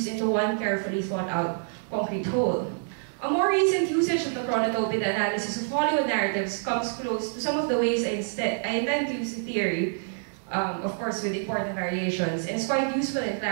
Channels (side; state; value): left; silent; 55 dB below the other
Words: into one carefully thought out concrete whole. A more recent usage of the chronotope in the analysis of Hollywood narratives comes close to some of the ways I intend to use the theory, of course with important variations, and it's quite useful in